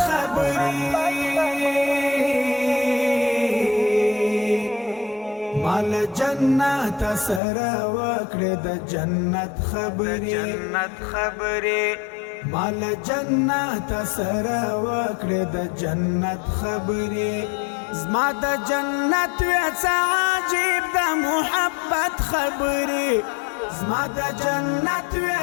خبرې مال جنت سره وکړه د جنت خبرې مال جنت سره وکړه د جنت خبرې زما د جنت وڅ عجیب د محبت خبرې زما د جنت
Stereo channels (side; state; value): right; drops out; at 7.4 s